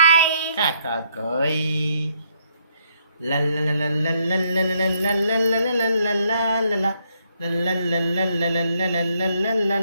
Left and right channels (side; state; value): both; inverted; correlation -0.72